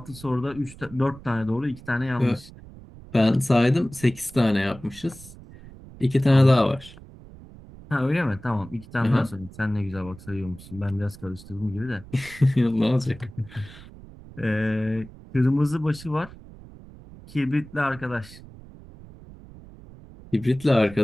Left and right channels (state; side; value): noise; right; rumble, 19 dB below the sound